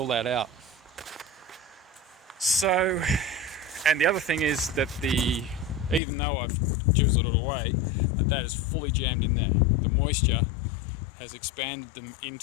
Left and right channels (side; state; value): right; drops out; at 6.0 s